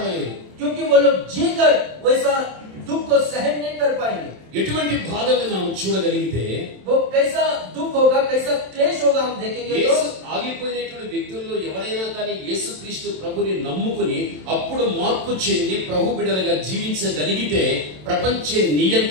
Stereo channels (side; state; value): left; late; 27 ms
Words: क्योंकि वो लोग जीकर वैसा दुख को सहन नहीं कर पाएंगे। ఎటువంటి బాధల్ని మనం చూడగలిగితే, वो कैसा दुख होगा, कैसा क्लेश होगा हम देखेंगे। तो యేసు ఆగిపోయినటువంటి వ్యక్తుల్లో ఎవరైనా కానీ యేసుక్రీస్తు ప్రభుని నమ్ముకుని అప్పుడు మార్పు చెంది ప్రభు బిడ్డలుగా జీవించగలిగితే ప్రపంచ